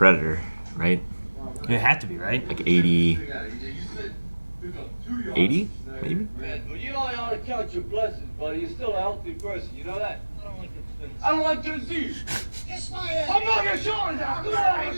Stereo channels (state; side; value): inverted; both; correlation -1.00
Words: right? It had to be, right? Like 80. 80, maybe? Man, well, you know I ought to count your blessings, buddy. You're still a healthy person. You know that? I don't like disease. Kiss my ass. I'm not your shoulders out.